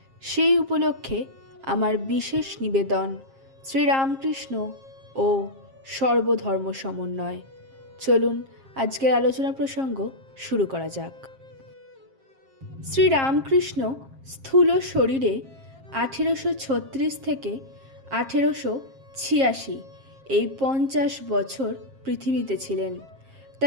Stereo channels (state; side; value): late; left; 7.5 ms